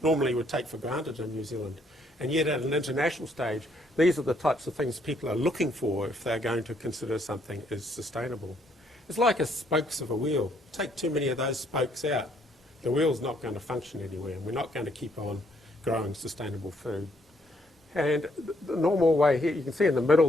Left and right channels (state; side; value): normal; both; correlation 0.69